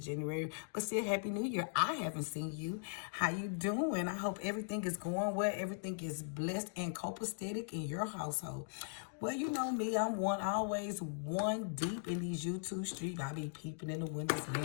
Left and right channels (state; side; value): silent; right; digital silence